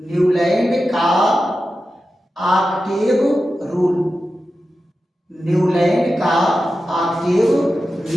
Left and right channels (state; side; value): normal; both; correlation 0.92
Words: का ऑक्टेव रूल। न्यूलैंड का ऑक्टेव